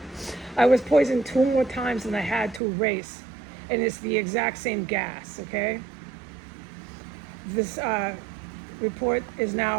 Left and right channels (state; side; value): drops out; left; at 2.6 s